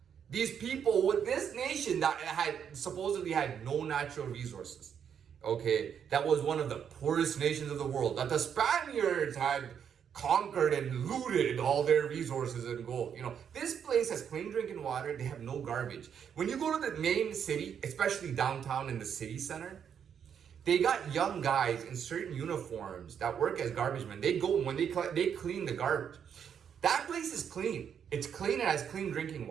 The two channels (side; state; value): left; quieter; 8.0 dB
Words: These people with this nation that had supposedly had no natural resources, okay, that was one of the poorest nations of the world, that the Spaniards had conquered and looted all their resources and gold. This place has clean drinking water. They have no garbage. When you go to the main city, especially downtown in the city center, they got young guys in certain uniforms that work as garbage men. They go when they clean the garbage. That place is clean. It's clean and has clean drinking